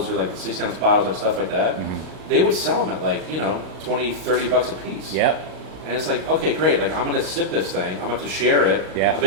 or like the 16-ounce bottles and stuff like that. Mm-hmm. They would sell them at like $20, $30 a piece. Yep. And it's like, okay, great. Like I'm gonna sip this thing. I'm gonna have to share it. Yeah. I'm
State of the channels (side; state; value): left; late; 38 ms